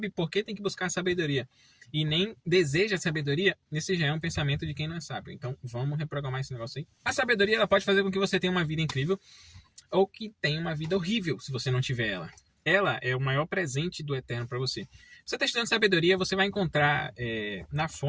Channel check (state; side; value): identical; both; correlation 1.00